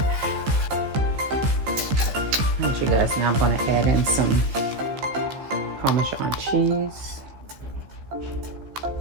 Alright, you guys, now I'm gonna add in some Parmesan cheese.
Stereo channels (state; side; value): late; left; 15 ms